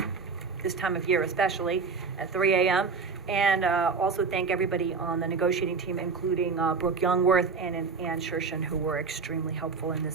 this time of year especially, at 3 a.m. And also thank everybody on the negotiating team, including Brooke Youngworth and Ann Shershin, who were extremely helpful in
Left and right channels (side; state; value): left; quieter; 4.8 dB